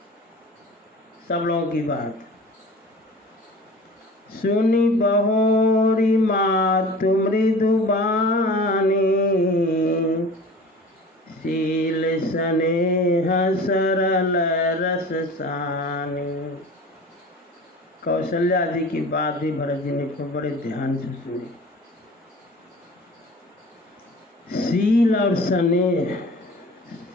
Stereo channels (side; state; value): both; normal; correlation 0.40